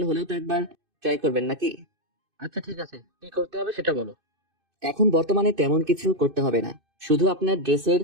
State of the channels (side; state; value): left; late; 2.6 ms